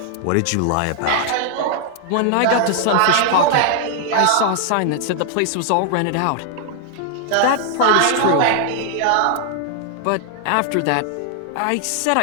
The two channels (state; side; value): different; both; correlation 0.00